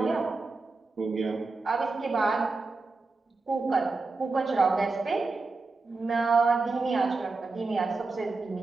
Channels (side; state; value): left; quieter; 3.8 dB